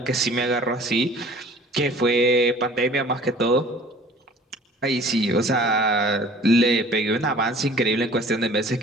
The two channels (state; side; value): normal; both; correlation 0.49